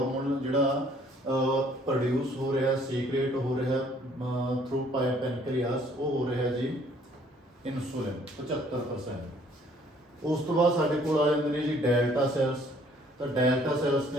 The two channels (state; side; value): normal; both; correlation 0.60